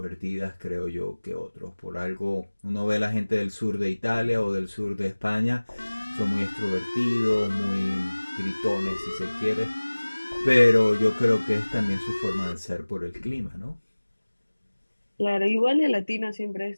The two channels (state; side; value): inverted; both; correlation -1.00